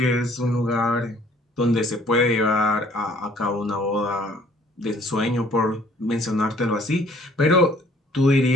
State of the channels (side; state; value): both; normal; correlation 0.58